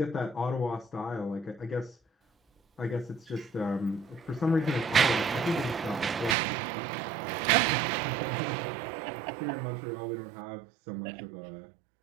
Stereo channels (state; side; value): drops out; left; at 6.4 s